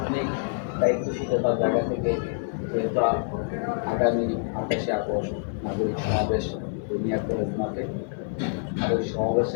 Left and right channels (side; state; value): right; silent; digital silence